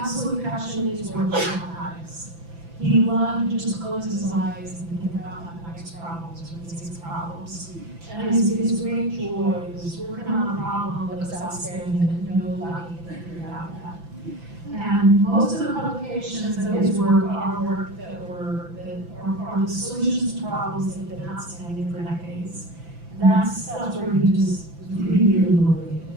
passion, is working with mathematics. He loved to just close his eyes and think about mathematics problems or physics problems. And his great joy was working on a problem that was outstanding that nobody had figured out yet. And most of the publications of his work are work that are the solutions to problems that have been outstanding for decades. And that's where he just really motivated.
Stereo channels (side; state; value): left; late; 5.9 ms